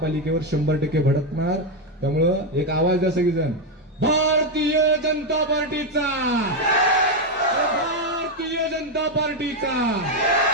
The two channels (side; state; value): both; normal; correlation 0.05